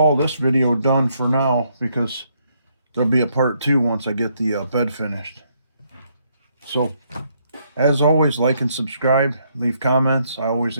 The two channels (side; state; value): both; inverted; correlation -0.73